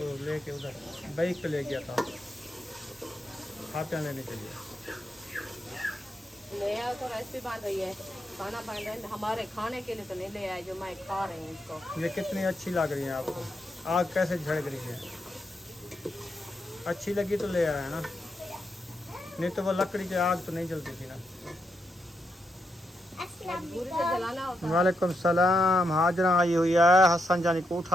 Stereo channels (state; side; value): normal; both; correlation 0.82